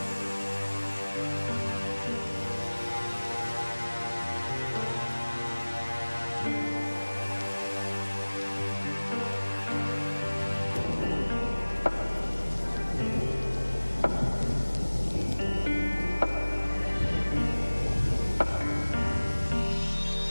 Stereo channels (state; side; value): inverted; both; correlation -1.00